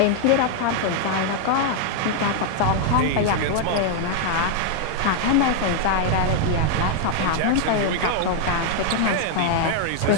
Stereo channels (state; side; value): different; both; correlation 0.00